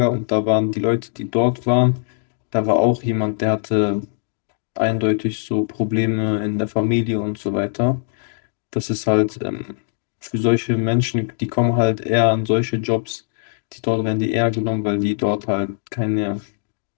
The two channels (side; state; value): right; silent; digital silence